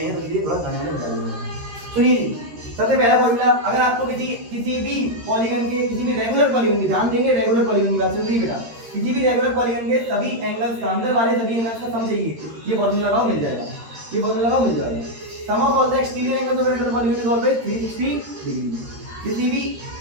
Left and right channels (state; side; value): late; left; 13 ms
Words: तो इसलिए थोड़ा गाने में बता दूंगा। सुनिए, सबसे पहला फॉर्मूला, अगर आपको किसी भी पॉलीगन के, किसी भी रेगुलर पॉलीगन की, ध्यान देंगे रेगुलर पॉलीगन की बात चल रही है बेटा, किसी भी रेगुलर पॉलीगन के सभी एंगल्स का, अंदर वाले सभी एंगल्स का सम चाहिए, ये फॉर्मूला लगाओ मिल जाएगा, ये फॉर्मूला लगाओ मिल जाएगा। Sum of all the exterior angles of regular polygon is always 360 degree. किसी भी